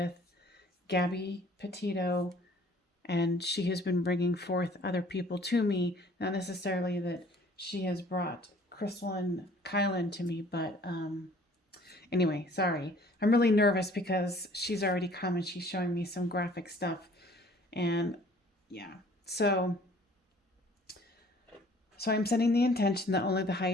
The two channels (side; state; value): both; normal; correlation 0.54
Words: Gabby Petito, and she has been bringing forth other people to me. Not necessarily that she has brought Crystal and Kylen to me, but anyway, sorry. I'm really nervous because she's already come and she's showing me some graphic stuff. And yeah, so I'm setting the intention that only the